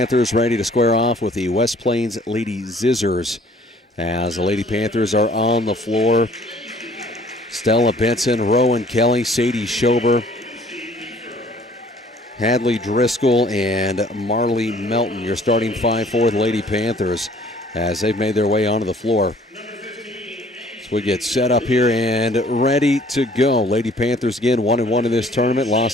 ready to square off with the West Plains Lady Zizzers. As the Lady Panthers are on the floor, Stella Benson, Rowan Kelly, Sadie Schober, Hadley Driscoll, and Marley Melton. Your starting five for the Lady Panthers as they've made their way onto the floor. So we get set up here and ready to go. Lady Panthers again 1-1 in this tournament.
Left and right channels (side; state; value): both; normal; correlation 0.56